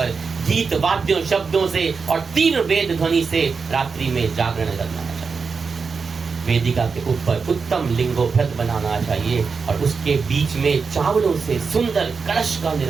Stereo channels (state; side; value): quieter; left; 5.1 dB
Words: गीत वाद्यों शब्दों से और तीव्र वेद ध्वनि से रात्रि में जागरण करना चाहिए। वेदिका के ऊपर उत्तम लिंगोभृत बनाना चाहिए और उसके बीच में चावलों से सुंदर कलश का